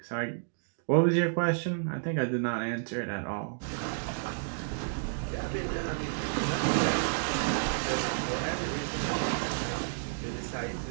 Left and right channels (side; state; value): left; silent; digital silence